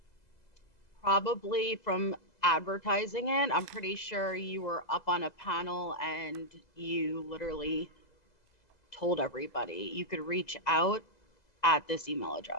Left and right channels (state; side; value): late; right; 2.0 ms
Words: Probably from advertising it. I'm pretty sure you were up on a panel and you literally told everybody you could reach out at this email